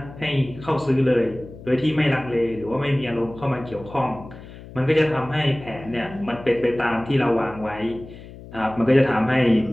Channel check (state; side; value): noise; left; hum, 16 dB below the sound